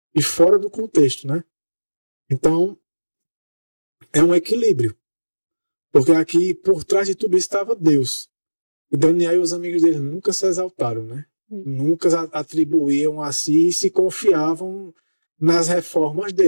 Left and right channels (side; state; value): both; inverted; correlation -1.00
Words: e fora do contexto, né? Então é um equilíbrio, porque aqui por trás de tudo isso estava Deus. E Daniel e os amigos dele nunca se exaltaram, né? Nunca atribuíam a si e se confiavam nas reformas